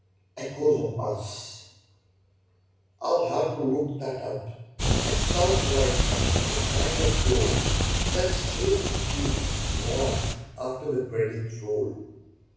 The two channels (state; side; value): identical; both; correlation 1.00